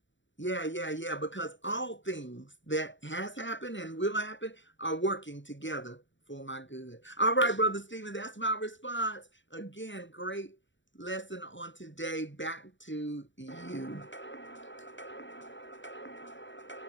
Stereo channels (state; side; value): late; right; 0.54 ms